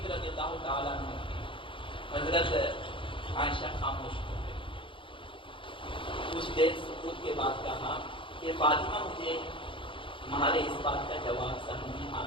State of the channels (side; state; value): right; late; 0.25 ms